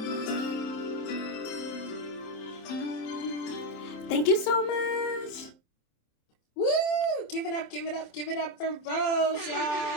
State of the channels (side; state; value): right; late; 27 ms